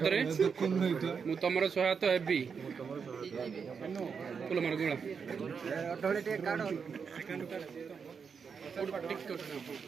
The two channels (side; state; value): left; quieter; 6.1 dB